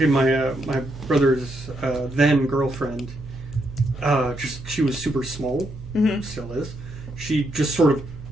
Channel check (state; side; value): noise; right; hum, 14 dB below the sound